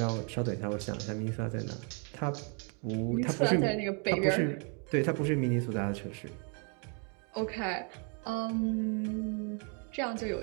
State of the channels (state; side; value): quieter; left; 37.9 dB